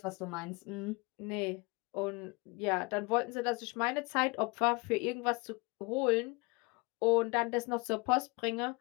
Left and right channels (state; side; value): quieter; right; 27.1 dB